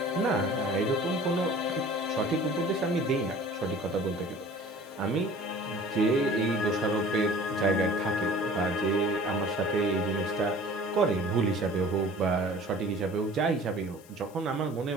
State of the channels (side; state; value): left; noise; hiss, 25 dB below the sound